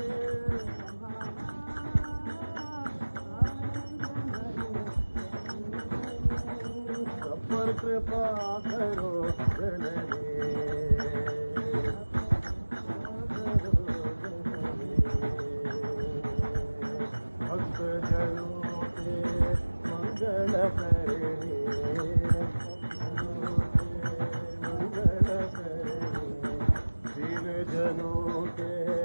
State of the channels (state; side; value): inverted; both; correlation -1.00